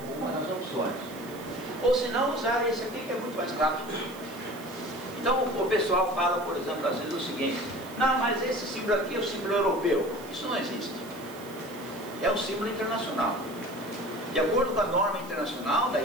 com uma das opções. Ou se não, usar esse aqui que é muito mais rápido. Então o pessoal fala, por exemplo, às vezes o seguinte: não, mas esse símbolo aqui é o símbolo europeu. Isso não existe. É um símbolo internacional. De acordo com a norma internacional da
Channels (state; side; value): noise; right; hiss, 19 dB below the sound